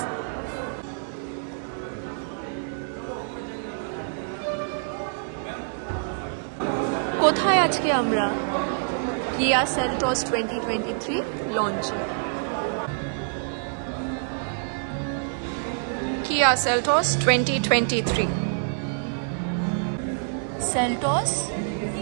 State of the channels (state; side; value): silent; left; 61 dB below the other